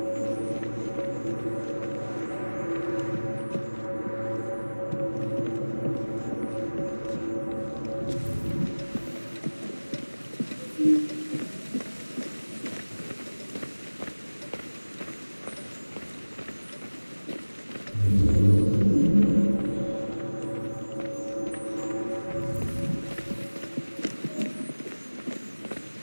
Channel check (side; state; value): both; inverted; correlation -1.00